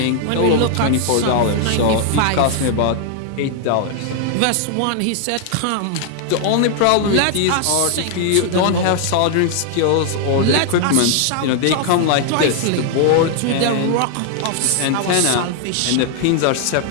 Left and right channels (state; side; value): different; both; correlation 0.00